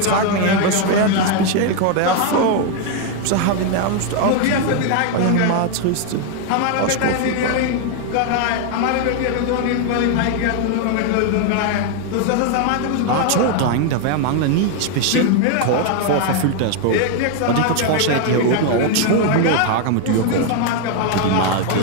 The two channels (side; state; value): both; different; correlation 0.00